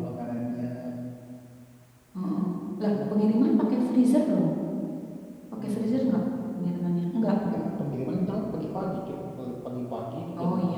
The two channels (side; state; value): both; identical; correlation 1.00